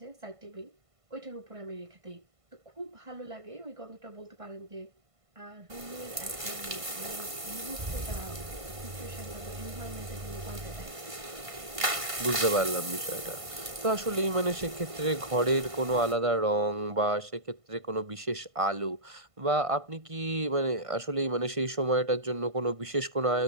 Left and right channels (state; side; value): late; left; 1.5 ms